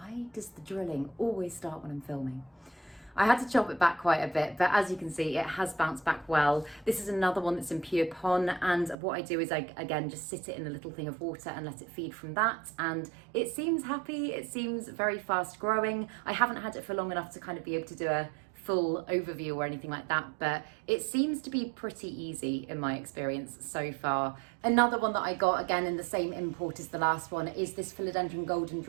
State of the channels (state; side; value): drops out; left; at 9.0 s